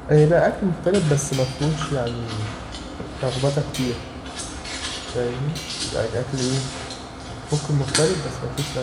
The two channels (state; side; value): identical; both; correlation 1.00